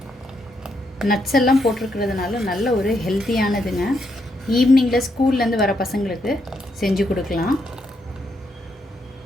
நட்ஸ் எல்லாம் போட்டிருக்கிறதுனால நல்ல ஒரு ஹெல்த்தியானதுங்க. ஈவினிங்கில் ஸ்கூல்லேருந்து வர பசங்களுக்கு செஞ்சு கொடுக்கலாம்.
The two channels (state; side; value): normal; both; correlation 0.78